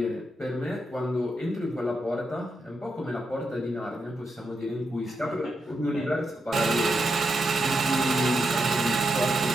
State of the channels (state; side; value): normal; both; correlation 0.84